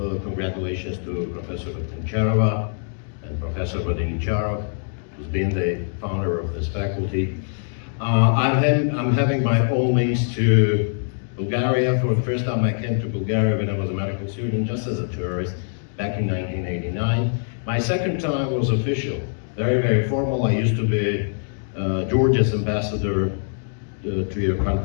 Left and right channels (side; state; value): right; silent; digital silence